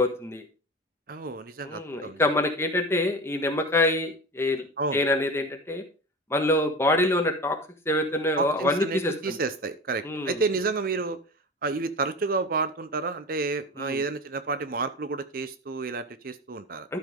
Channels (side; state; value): both; normal; correlation 0.30